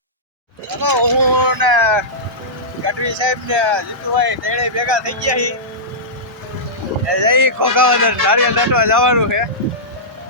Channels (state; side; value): normal; both; correlation -0.15